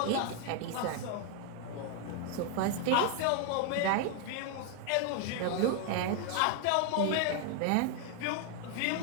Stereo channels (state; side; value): different; both; correlation 0.00